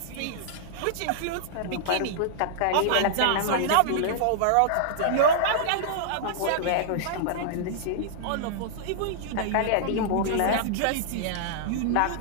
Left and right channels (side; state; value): both; different; correlation -0.01